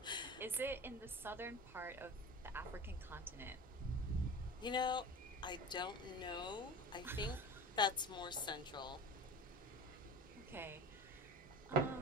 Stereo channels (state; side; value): normal; both; correlation 0.33